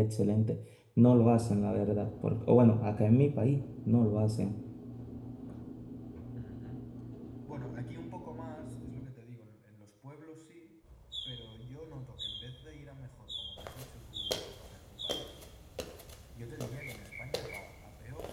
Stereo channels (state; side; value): identical; both; correlation 1.00